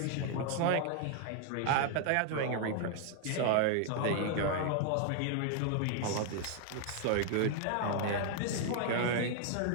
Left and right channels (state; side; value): different; both; correlation 0.00